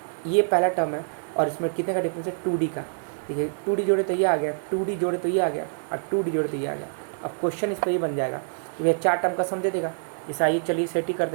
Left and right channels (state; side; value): silent; left; 60 dB below the other